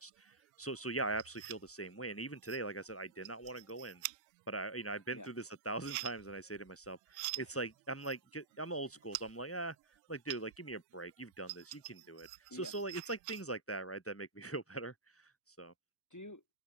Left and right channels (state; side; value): quieter; left; 3.1 dB